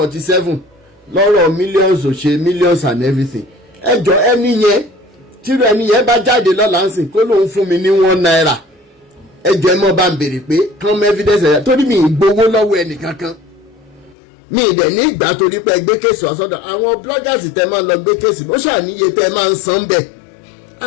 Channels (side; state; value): right; drops out; at 14.2 s